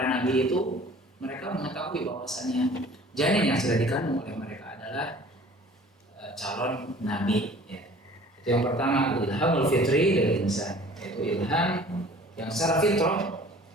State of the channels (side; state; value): both; normal; correlation 0.49